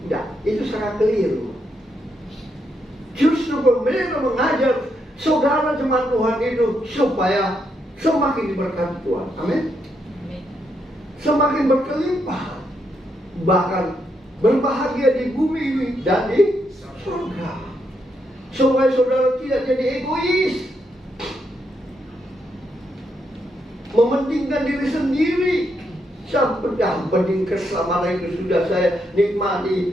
Tidak, itu sangat keliru. Justru pendeta mengajar saudara jemaat Tuhan itu supaya semakin diberkati Tuhan. Amin. Semakin berkelimpahan. Bahkan berbahagia di bumi ini dan di surga. Supaya saudara tidak jadi egois, mementingkan diri sendiri. Yang penting keselamatan itu sudah saya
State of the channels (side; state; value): both; normal; correlation 0.79